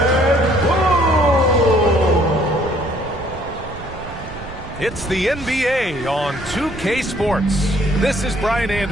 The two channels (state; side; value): noise; right; rumble, 14 dB below the sound